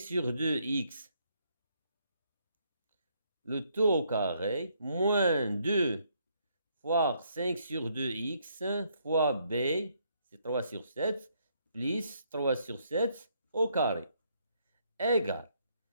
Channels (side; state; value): both; inverted; correlation -0.71